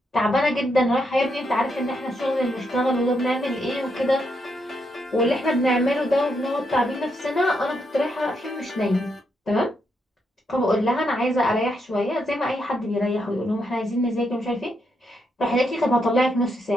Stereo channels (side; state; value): both; normal; correlation 0.80